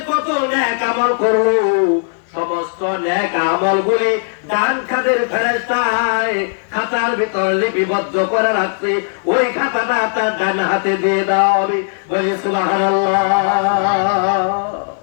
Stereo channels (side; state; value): right; silent; digital silence